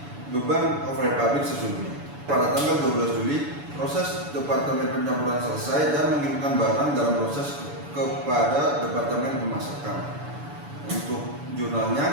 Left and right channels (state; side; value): late; left; 7.0 ms